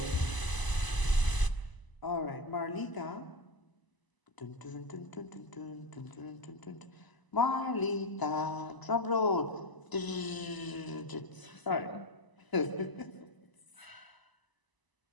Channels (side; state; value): right; late; 1.0 ms